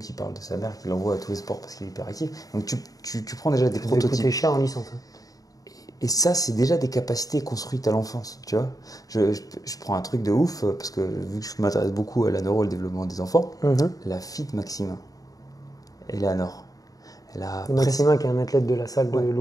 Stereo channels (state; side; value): late; right; 0.18 ms